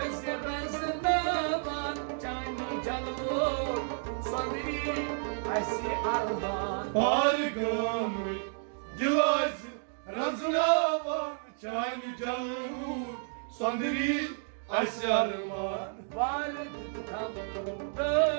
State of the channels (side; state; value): left; silent; 57 dB below the other